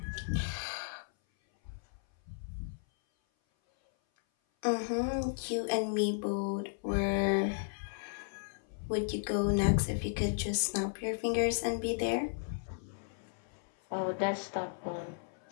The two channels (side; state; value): right; silent; 55 dB below the other